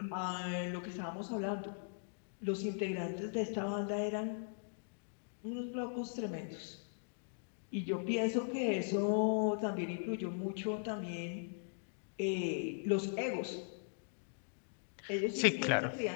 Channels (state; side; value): silent; right; digital silence